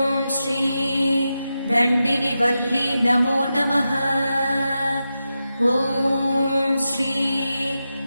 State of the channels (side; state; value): both; inverted; correlation -0.90